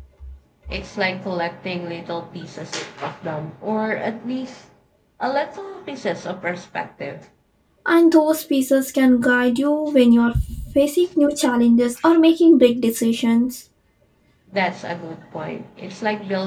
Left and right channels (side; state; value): both; identical; correlation 1.00